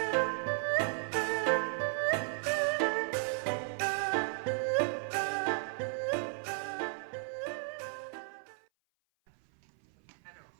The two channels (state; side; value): silent; left; 55 dB below the other